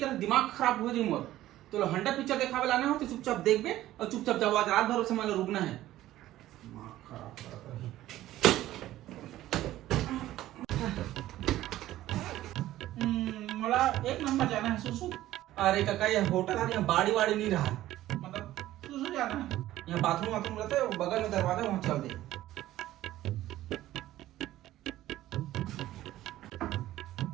दिमाग खराब हो जाई मोर तो हंडा पिक्चर देखावे लाने हो तो चुपचाप देखबे और चुपचाप जाओ आज रात भर से मान रुकना है दिमाग खराब करत रही मला एक नंबर जाना है सुसु अरे काका ये होटल है यहाँ बाड़ी वाड़ी नहीं रहा मतलब सुसु जाना है यहाँ बाथरूम वाथरूम रहता है बगल में दरवाजा वहाँ चल दे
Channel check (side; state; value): left; quieter; 14.6 dB